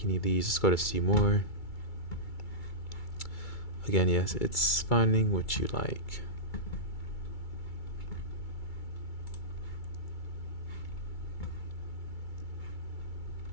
any of these. Let's go to see more. Again, yes, it's finding what you like.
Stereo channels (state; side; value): late; right; 2.3 ms